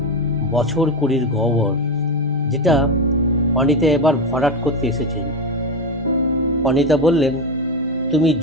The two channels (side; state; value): both; normal; correlation 0.15